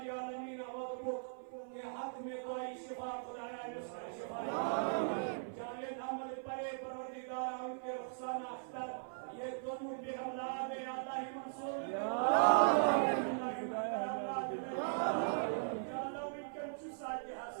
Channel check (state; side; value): silent; left; 52 dB below the other